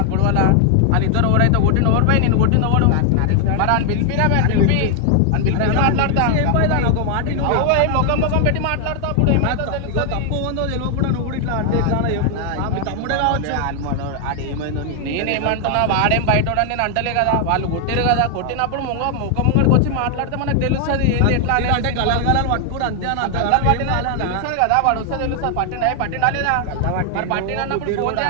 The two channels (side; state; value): both; different; correlation 0.00